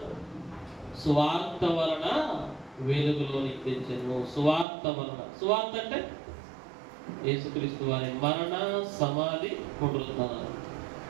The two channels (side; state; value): left; drops out; at 4.7 s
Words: సువార్త వలన వెలుగులోనికి తెచ్చాను. సువార్త వలన, సువార్త అంటే యేసుక్రీస్తు వారి మరణ, సమాధి, పునరుత్థానం.